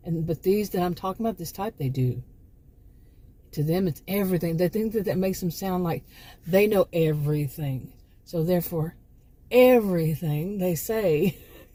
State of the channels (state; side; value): identical; both; correlation 1.00